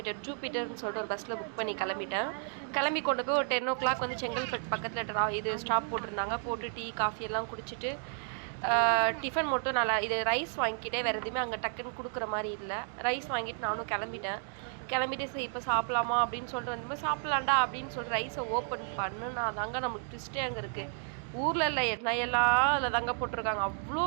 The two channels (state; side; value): silent; left; 56 dB below the other